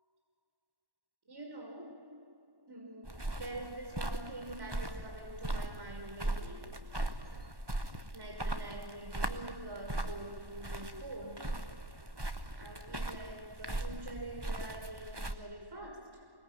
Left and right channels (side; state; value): left; late; 1.1 ms